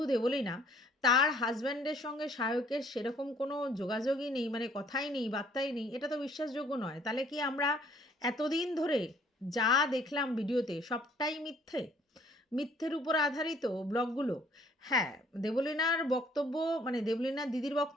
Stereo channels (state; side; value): normal; both; correlation 0.60